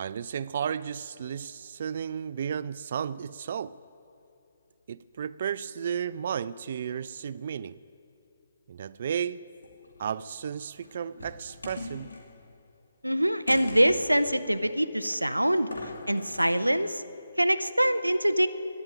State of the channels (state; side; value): inverted; both; correlation -0.93